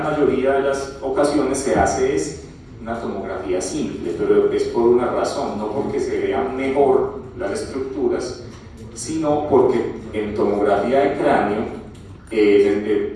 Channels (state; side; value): identical; both; correlation 1.00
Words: mayoría de las ocasiones se hace es una tomografía simple, pero es por una razón, no porque se vean mejor las estructuras, sino porque en tomografía de cráneo,